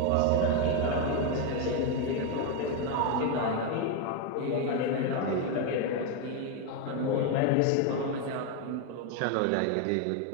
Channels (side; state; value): both; different; correlation 0.02